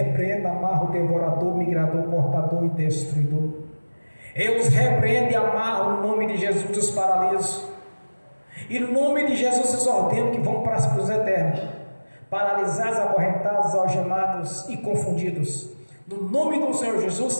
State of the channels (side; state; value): both; inverted; correlation -1.00